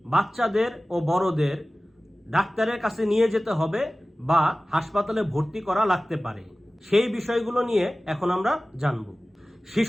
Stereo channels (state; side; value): normal; both; correlation 0.97